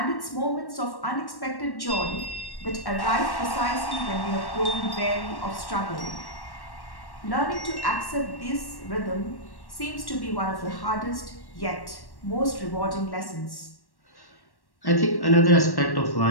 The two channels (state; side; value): late; right; 1.1 ms